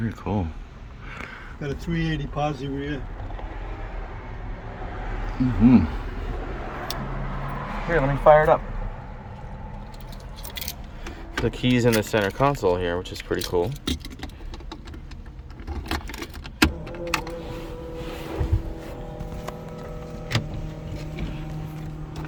cool. Got a 380 Posi Rear. Here, let me fire it up. The keys in the center console here, which is pretty cool.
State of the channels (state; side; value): identical; both; correlation 1.00